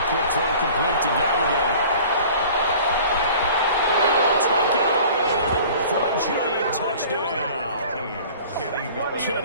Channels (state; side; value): inverted; both; correlation -0.46